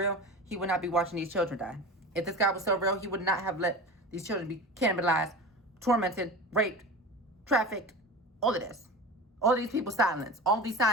he would not be watching these children die. If this God was so real, he would not have let these children be cannibalized, tormented, raped, trafficked, all of this. All of these people silenced. All these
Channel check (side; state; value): both; normal; correlation 0.31